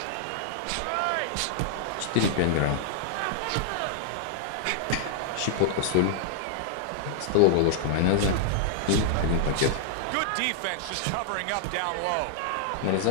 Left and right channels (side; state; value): both; different; correlation -0.01